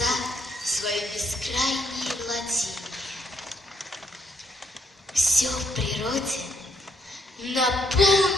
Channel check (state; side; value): normal; both; correlation 0.73